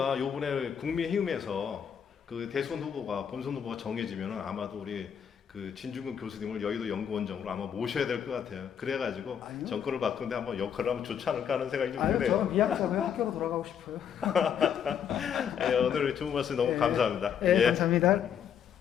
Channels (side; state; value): right; quieter; 8.2 dB